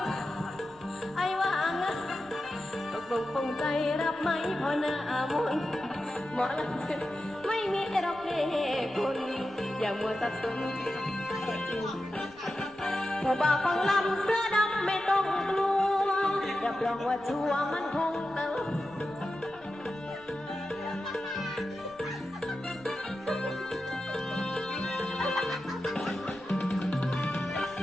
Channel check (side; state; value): left; noise; rumble, 28 dB below the sound